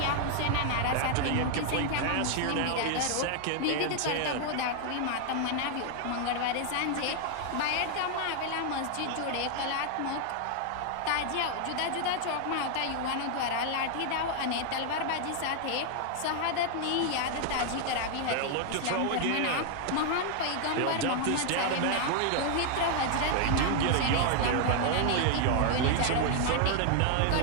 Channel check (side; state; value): both; different; correlation 0.00